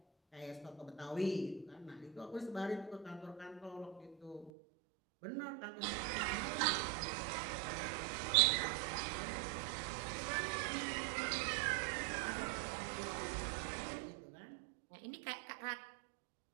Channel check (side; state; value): left; drops out; at 4.5 s